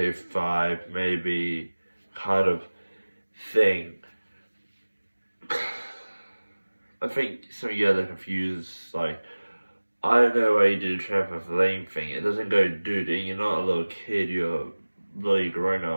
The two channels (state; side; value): inverted; both; correlation -1.00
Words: 5, maybe kind of thing. I think some of you guys are confused, like, I don't know why you did a trampoline thing. It doesn't go, dude, you're not a little kid, you're a bloody grown